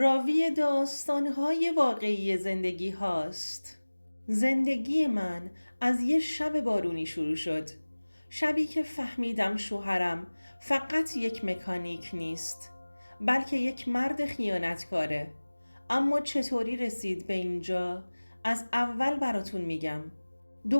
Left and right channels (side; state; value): both; inverted; correlation -1.00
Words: داستان‌های واقعی زندگی هاست. زندگی من از یه شب بارونی شروع شد. شبی که فهمیدم شوهرم فقط یک مکانیک نیست، بلکه یک مرد خیانتکاره. اما چطوری رسید به اینجا؟ از اول براتون میگم.